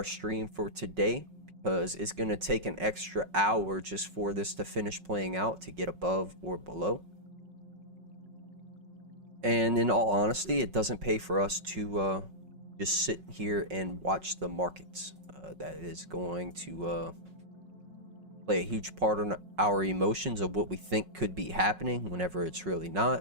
stream for today, because it's going to take an extra hour just for this to finish playing out, to get above or below. And in all honesty, it doesn't pay for us to just sit here and watch the markets. That is going to play a huge part on our emotions of what we think could be happening whenever it's really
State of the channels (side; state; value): left; late; 5.4 ms